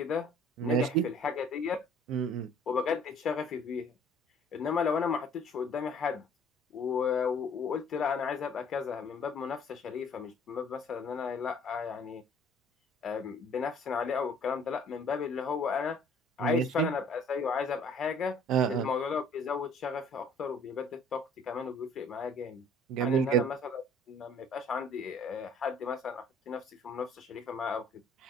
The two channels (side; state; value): both; normal; correlation 0.55